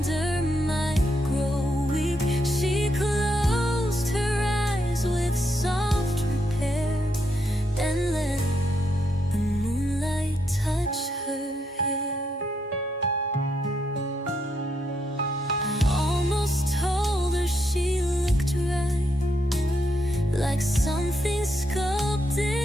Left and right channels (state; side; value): normal; both; correlation 0.79